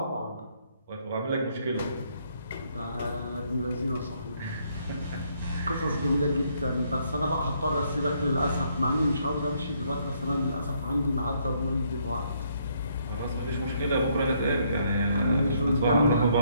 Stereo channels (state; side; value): inverted; both; correlation -0.71